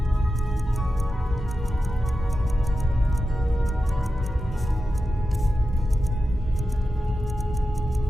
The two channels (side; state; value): both; normal; correlation 0.91